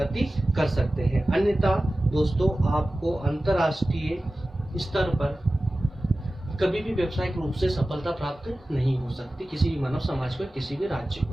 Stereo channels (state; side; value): normal; both; correlation 0.96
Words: कर सकते हैं। अन्यथा दोस्तों आपको अंतर्राष्ट्रीय स्तर पर कभी भी व्यावसायिक रूप से सफलता प्राप्त नहीं हो सकती किसी भी मानव समाज को, किसी भी राज्य